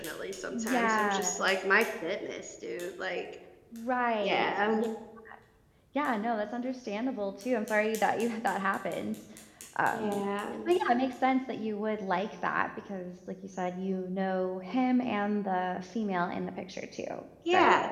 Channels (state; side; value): identical; both; correlation 1.00